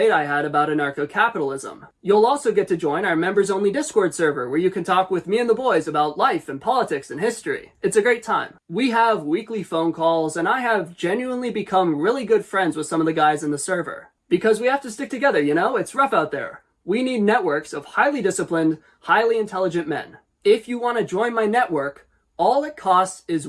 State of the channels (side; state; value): both; identical; correlation 1.00